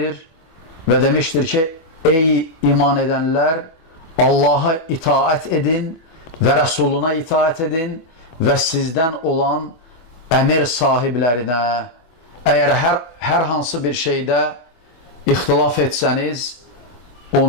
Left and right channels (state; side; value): late; right; 24 ms